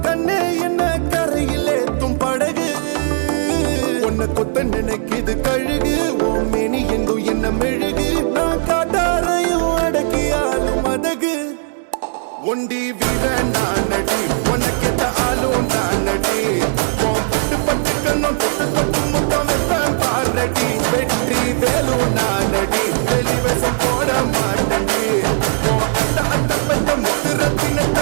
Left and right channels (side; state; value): left; silent; digital silence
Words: கண்ணே என்ன கரையில் ஏத்தும் படகு உன்னை கொத்த நினைக்குது கழுகு ஓ மேனி எங்கும் என்ன மெழுகு நான் காட்டாரையும் அடக்கியாலும் அதகு ஒண்டி வீட நான் நடி உனக்கேத்த ஆளும் நான் நடி உன் பட்டு பட்டுக்கணும் தொட்டு தொட்டு முத்தம் வெப்பம் பாரடி வெற்றி வேலும் நான் நடி வெளிவசம் போட மாட்டடி உன் அத்த அத்த பத்த முத்துர